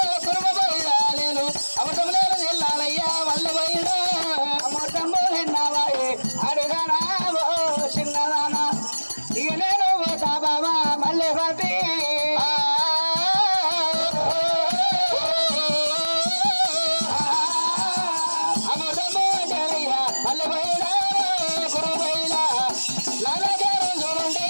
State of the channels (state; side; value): inverted; both; correlation -1.00